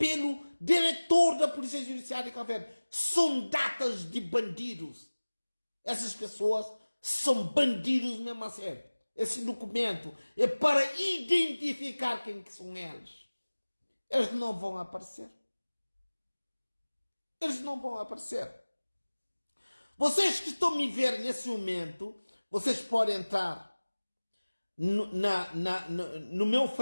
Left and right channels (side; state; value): both; inverted; correlation -1.00